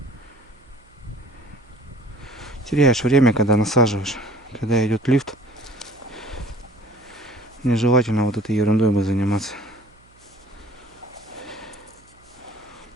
Теряешь время, когда насаживаешь. Когда идет лифт, нежелательно вот этой ерундой бы заниматься.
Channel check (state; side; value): noise; right; hum, 30 dB below the sound